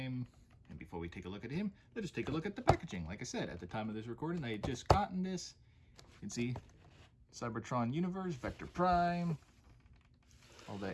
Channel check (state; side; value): identical; both; correlation 1.00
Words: And before we take a look at him, let us take a look at the packaging. Like I said, at the time of this recording, I had just gotten this. You can see Cybertron Universe, Vector Prime, all